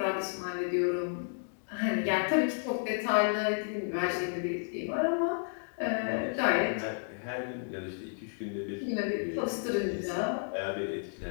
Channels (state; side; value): silent; right; digital silence